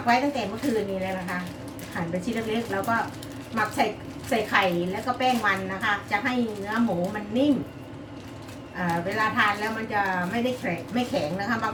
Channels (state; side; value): identical; both; correlation 1.00